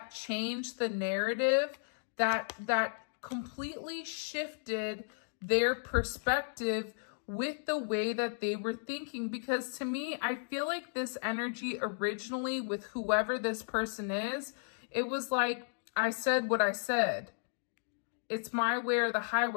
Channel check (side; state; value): right; silent; digital silence